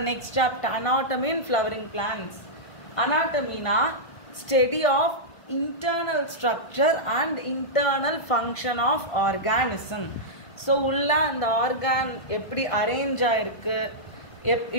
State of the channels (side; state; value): right; late; 1.4 ms